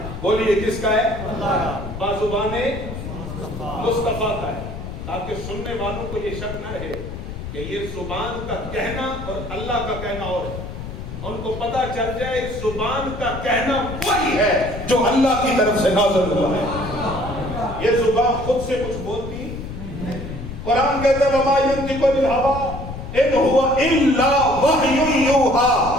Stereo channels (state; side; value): noise; left; rumble, 9 dB below the sound